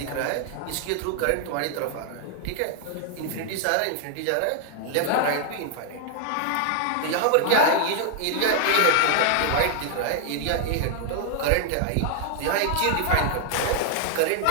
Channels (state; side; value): different; both; correlation 0.00